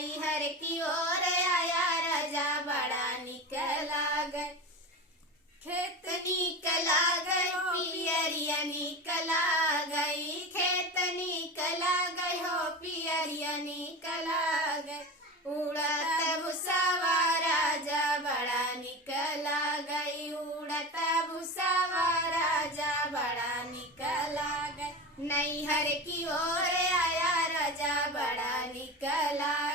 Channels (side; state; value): both; normal; correlation 0.27